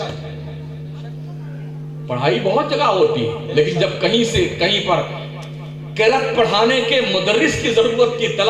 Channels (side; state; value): both; identical; correlation 1.00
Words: پڑھائی بہت جگہ ہوتی ہے، لیکن جب کہیں سے کہیں پر قرأت پڑھانے کے مدرس کی ضرورت کی